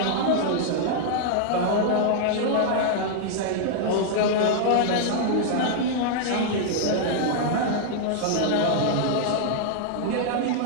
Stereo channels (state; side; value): different; both; correlation -0.01